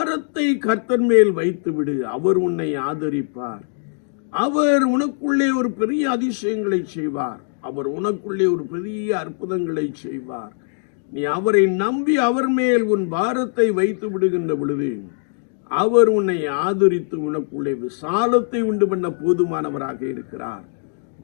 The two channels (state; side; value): silent; right; digital silence